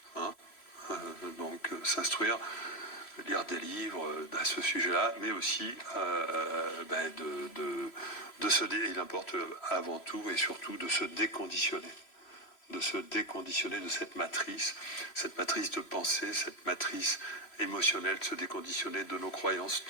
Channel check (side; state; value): right; late; 3.0 ms